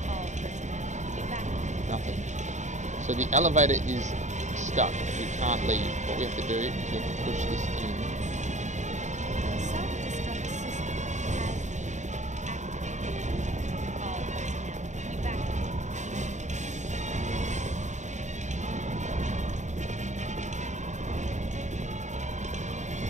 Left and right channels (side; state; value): left; late; 0.34 ms